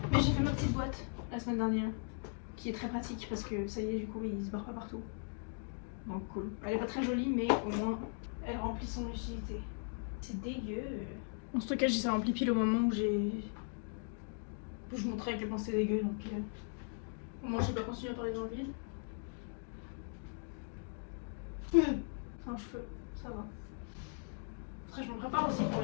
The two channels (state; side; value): silent; right; 52 dB below the other